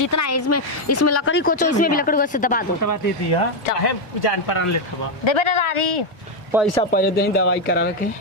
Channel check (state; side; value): normal; both; correlation 0.04